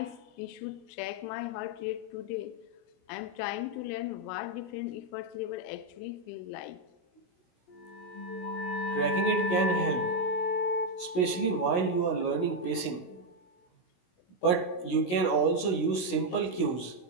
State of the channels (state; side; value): late; right; 16 ms